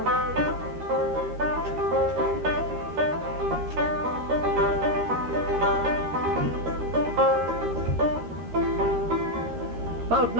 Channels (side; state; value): left; late; 13 ms